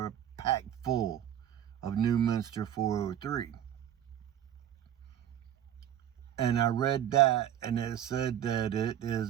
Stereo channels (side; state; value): left; quieter; 10.5 dB